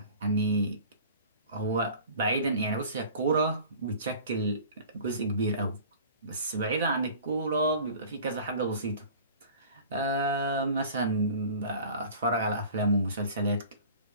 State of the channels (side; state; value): both; inverted; correlation -0.43